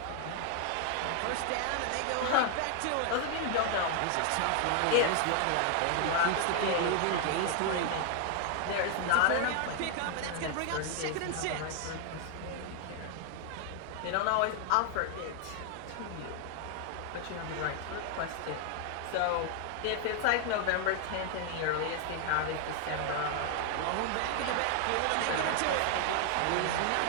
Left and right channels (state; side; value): different; both; correlation 0.00